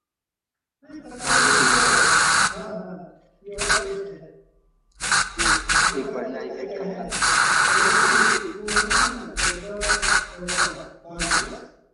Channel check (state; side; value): identical; both; correlation 1.00